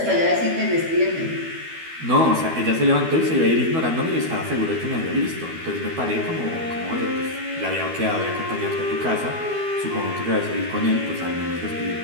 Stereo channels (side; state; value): left; late; 12 ms